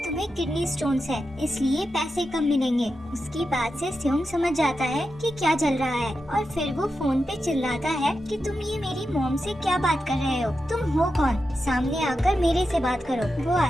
तुम्हें किडनी स्टोन्स है, इसलिए पैसे कम मिलेंगे। उसकी बात से स्योंग समझ जाता है कि क्या चल रहा है और फिर वो फोन पे चिल्लाता है कि तुम ये मेरी मॉम से क्या बात कर रहे हो, तुम हो कौन, सामने आकर मेरे से बात करो। वो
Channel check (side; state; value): both; normal; correlation 0.89